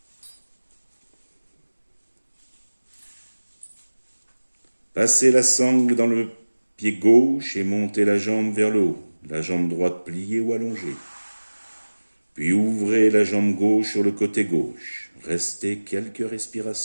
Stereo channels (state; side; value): inverted; both; correlation -1.00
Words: Passez la sangle dans le pied gauche et montez la jambe vers le haut, la jambe droite pliée ou allongée. Puis ouvrez la jambe gauche sur le côté gauche. Restez quelques